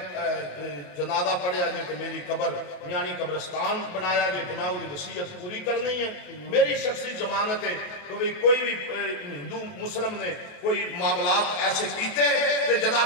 جنازہ پڑھیا جائے تو میری قبر یعنی قبرستان بنایا جائے تو میں وہ وصیت پوری کرنی ہے میری شخصی ضمانت ہے تو بھی کوئی بھی ہندو مسلم نے کوئی معاملات ایسے کیتے کہ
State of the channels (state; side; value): late; right; 28 ms